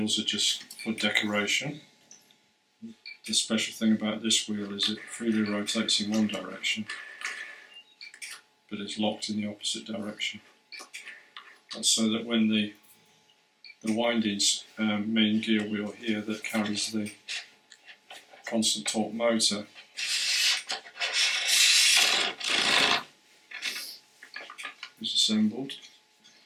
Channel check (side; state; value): both; identical; correlation 1.00